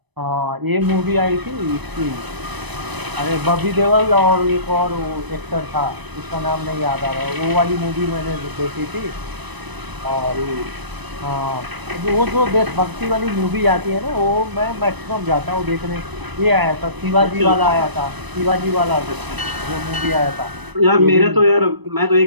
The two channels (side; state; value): left; late; 1.0 ms